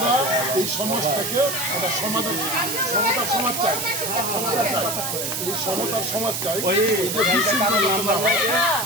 এই সমাজটাকে একটা সমতার সমাজ চাই, এই সমতার সমাজ চাই।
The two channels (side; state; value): right; noise; hiss, 2 dB below the sound